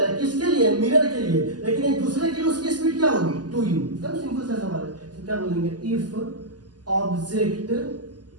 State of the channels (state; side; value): late; left; 0.70 ms